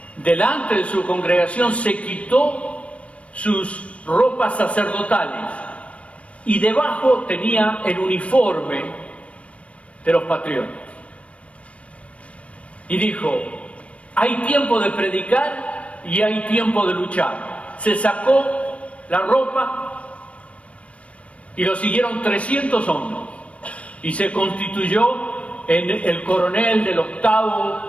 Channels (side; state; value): right; late; 0.063 ms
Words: delante de su congregación, se quitó sus ropas sacerdotales y debajo tenía el uniforme de los patriotas. Y dijo: hay tiempo de predicar y hay tiempo de luchar. Se sacó la ropa y lo siguieron 300 hombres, y se constituyó en el coronel del 8º